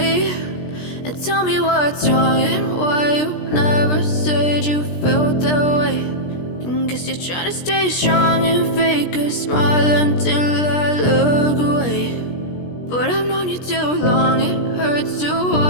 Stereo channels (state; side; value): late; right; 17 ms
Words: And tell me what's wrong and why you never said you felt that way. And guess you're trying to stay strong and fake a smile until I look away. But I've known you too long, it hurts to